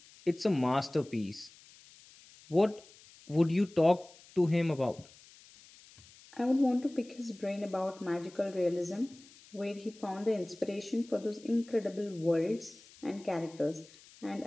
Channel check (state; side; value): noise; left; hiss, 23 dB below the sound